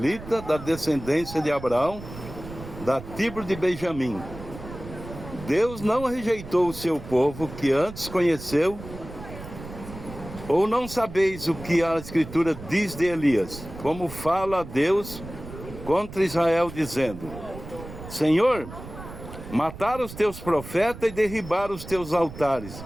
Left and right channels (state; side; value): noise; right; rumble, 13 dB below the sound